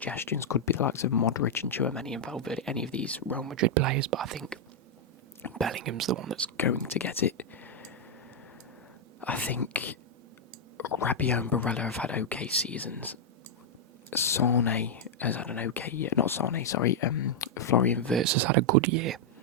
could be the likes of Modric and Tchouaméni and Valverde, any of these Real Madrid players, but I think Bellingham's the one that's going to get it. I think Rabiot and Barella have had okay seasons. Sane has had an okay year. Not Sane, sorry. Florian Wirtz has had a good year.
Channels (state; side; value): normal; both; correlation -0.03